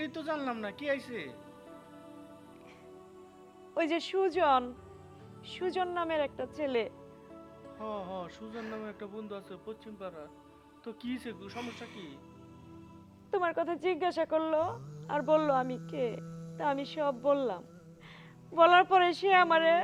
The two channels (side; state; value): both; identical; correlation 1.00